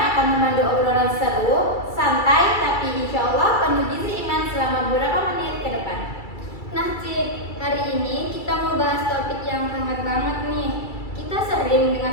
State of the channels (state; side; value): late; right; 2.3 ms